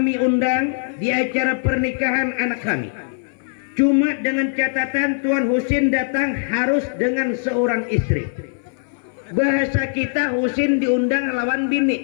undang di acara pernikahan anak kami. Cuma dengan catatan Tuan Husin datang harus dengan seorang istri. Bahasa kita Husin diundang lawan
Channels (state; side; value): silent; right; 59 dB below the other